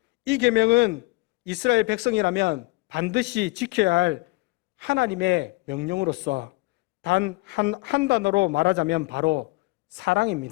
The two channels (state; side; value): quieter; right; 23.6 dB